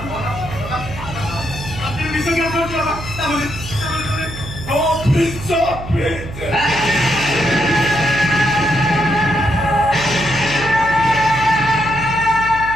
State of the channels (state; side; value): noise; right; hum, 11 dB below the sound